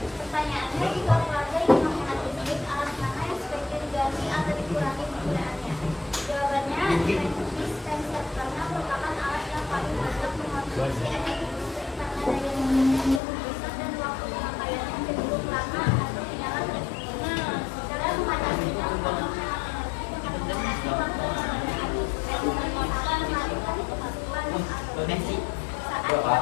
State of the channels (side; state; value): right; drops out; at 13.2 s